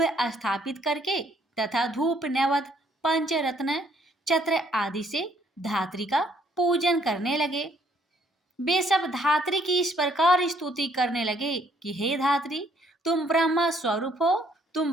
स्थापित करके तथा धूप, नैवेद्य, पंचरत्न, छत्र आदि से धात्री का पूजन करने लगे। वे सब धात्री की इस प्रकार स्तुति करने लगे कि हे धात्री, तुम ब्रह्मा स्वरूप हो,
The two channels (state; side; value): normal; both; correlation 0.66